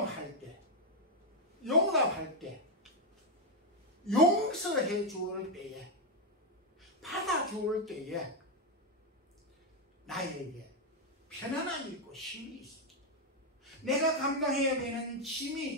때, 용납할 때, 용서해 주을 때에, 받아주을 때에 나에게 편안함이 있고 쉼이 있습니다. 내가 감당해야 되는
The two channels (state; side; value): normal; both; correlation 0.02